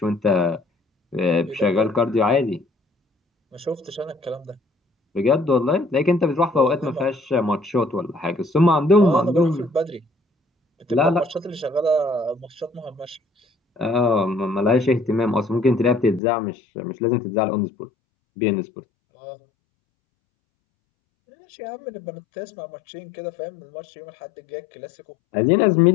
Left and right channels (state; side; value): drops out; right; at 16.2 s